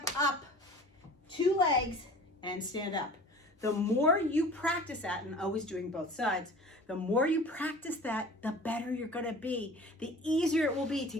up, 2 legs, and stand up. The more you practice that, and always doing both sides, the more you practice that, the better you're gonna be. The easier it will be to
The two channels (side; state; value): both; normal; correlation 0.43